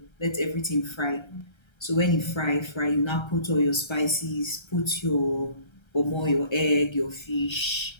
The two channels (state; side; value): late; right; 1.3 ms